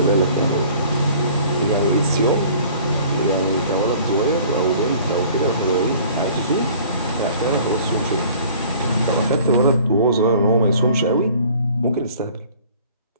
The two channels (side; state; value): both; inverted; correlation -0.51